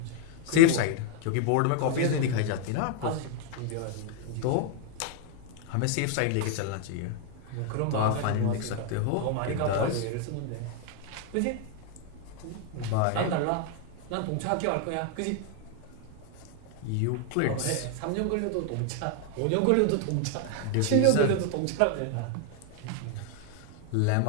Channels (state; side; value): different; both; correlation 0.00